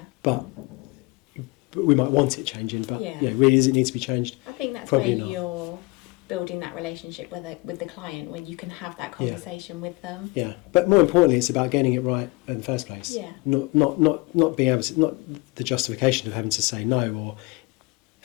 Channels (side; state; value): right; quieter; 24.7 dB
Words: But we might want it changing. But really, does it need to be changed? I think that's Probably where not. you're building that relationship with the client, when you can have that conversation with them. But more importantly, it's about getting it right in the first place. Not being able to, not the justification of having to say no or